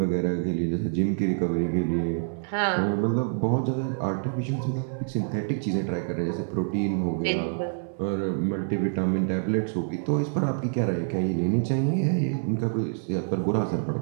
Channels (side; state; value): left; silent; 60 dB below the other